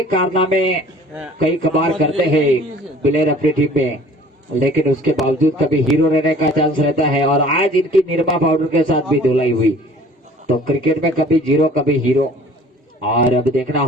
कारनामे कई कबार करते हैं प्लेयर अपनी टीम में, लेकिन उसके बावजूद कभी हीरो रहने का चांस रहता है। और आज इनकी निरमा पाउडर के साथ भी धुलाई हुई, तो क्रिकेट में कभी जीरो कभी हीरो। और अब देखना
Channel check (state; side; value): normal; both; correlation 0.50